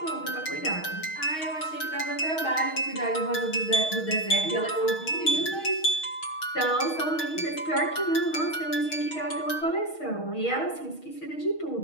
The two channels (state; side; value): late; right; 6.4 ms